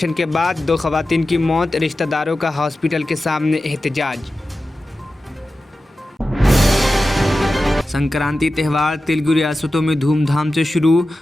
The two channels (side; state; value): both; normal; correlation 0.94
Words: کے بعد 2 خواتین کی موت، رشتہ داروں کا ہاسپٹل کے سامنے احتجاج۔ سنکرانتی تہوار تیلگو ریاستوں میں دھوم دھام سے شروع۔